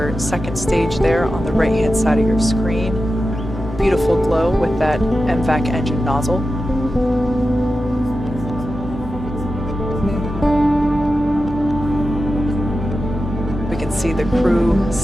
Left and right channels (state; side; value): normal; both; correlation 0.92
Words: second stage there on the right-hand side of your screen. Beautiful glow with that MVAC engine nozzle. We can see the crew